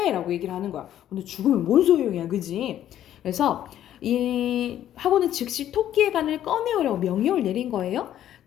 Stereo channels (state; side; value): quieter; right; 11.5 dB